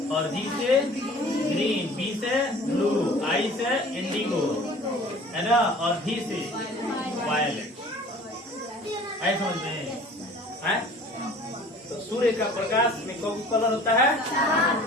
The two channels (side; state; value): both; normal; correlation 0.47